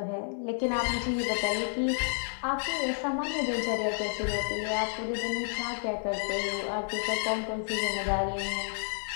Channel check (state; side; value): silent; right; digital silence